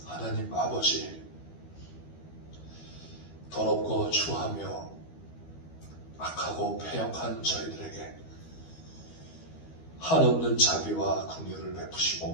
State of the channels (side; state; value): right; late; 12 ms